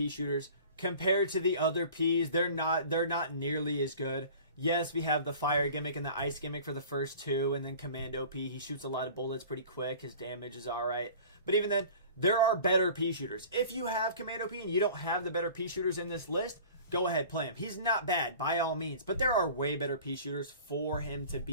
shooters. Compared to the other Ps, they're not nearly as good. Yes, we have the fire gimmick and the ice gimmick for the first two, and then Commando P. He shoots a lot of bullets pretty quick. His damage is alright. But even then, there are better P shooters. If you have Commando P and you don't have the better P shooters in this list, go ahead, play him. He's not bad, by all means. But there are way better P shooters for him to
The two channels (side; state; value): both; inverted; correlation -0.43